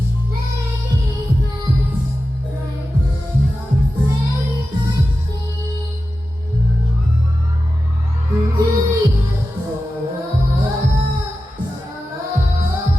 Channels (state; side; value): normal; both; correlation 0.93